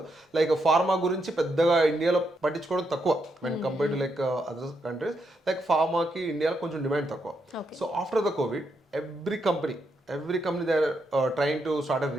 లైక్ ఫార్మా గురించి పెద్దగా ఇండియాలో పట్టించుకోవడం తక్కువ when compare to like other countries. Like ఫార్మాకి ఇండియాలో కొంచెం డిమాండ్ తక్కువ. So after the covid every company they are trying to start a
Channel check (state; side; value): normal; both; correlation 0.80